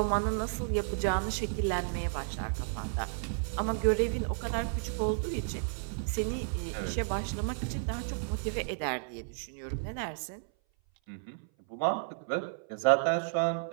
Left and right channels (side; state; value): left; silent; 56 dB below the other